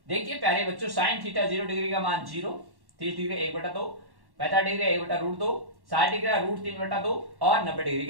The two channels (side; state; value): left; late; 1.1 ms